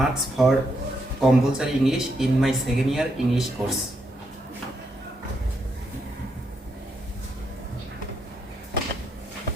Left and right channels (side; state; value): both; normal; correlation 0.79